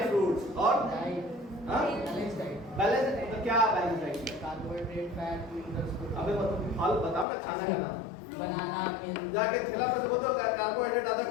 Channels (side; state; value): right; drops out; at 7.2 s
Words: फ्रूट्स और बैलेंस। तो क्या balance diet? Carbohydrate, fat, minerals. अबे फल बताओ ना, खाना है ना, बनाना, मिल्क। जाके ठेला पे से बोलो कार्बोहाइड्रेट आधा